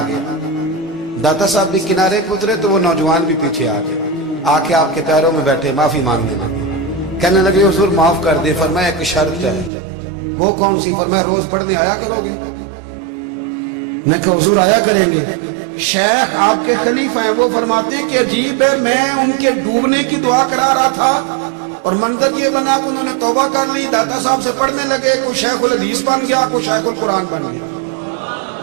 गया, दाता साहब भी किनारे पे उतरे तो वो नौजवान भी पीछे आ गए, आके आपके पैरों में बैठे माफी मांगने लगे, कहने लगे हुजूर माफ कर दे। फरमाया एक शर्त है। वो कौन सी? फरमाया रोज पढ़ने आया करोगे? मैं कहा हुजूर आया करेंगे। शेख आपके खलीफा हैं, वो फरमाते हैं कि अजीब है, मैं उनके डूबने की दुआ करा रहा था और मंजर ये बना कि उन्होंने तौबा कर ली, दाता साहब से पढ़ने लगे, कोई शेखुल हदीस बन गया, कोई शेखुल कुरान बन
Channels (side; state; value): left; drops out; at 9.7 s